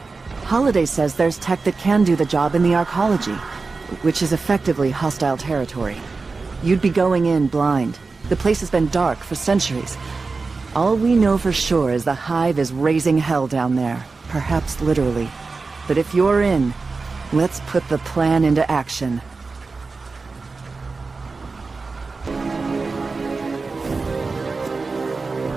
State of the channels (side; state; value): left; quieter; 4.1 dB